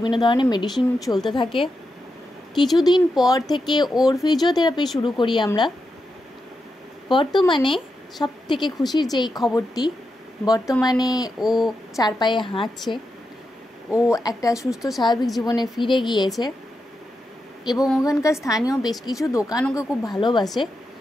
ধরনের মেডিসিন চলতে থাকে। কিছুদিন পর থেকে ওর ফিজিওথেরাপি শুরু করি আমরা। বর্তমানে সব থেকে খুশির যেই খবরটি, বর্তমানে ও 4 পায়ে হাঁটছে, ও একটা সুস্থ স্বাভাবিক জীবনে ফিরে গিয়েছে এবং ওখানকার স্থানীয় বেশ কিছু দোকান ওকে খুব ভালোবাসে।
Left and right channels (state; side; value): normal; both; correlation 0.87